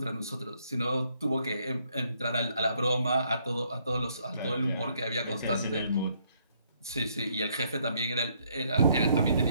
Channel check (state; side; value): inverted; both; correlation -0.70